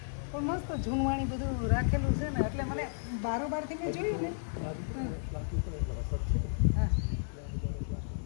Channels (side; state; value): right; silent; digital silence